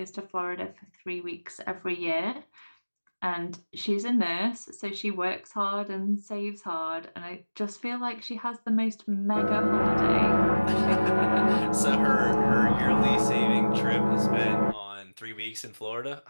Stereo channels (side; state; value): both; inverted; correlation -1.00